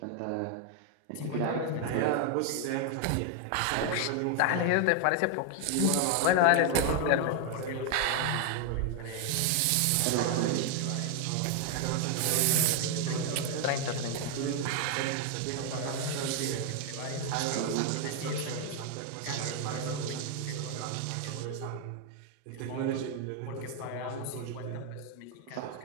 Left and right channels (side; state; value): both; different; correlation 0.00